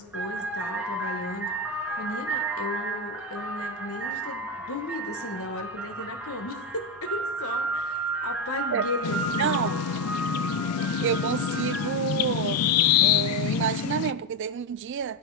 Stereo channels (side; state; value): both; normal; correlation 0.10